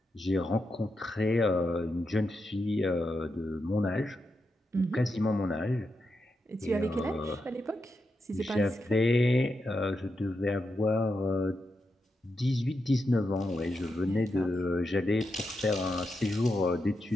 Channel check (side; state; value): both; normal; correlation 0.86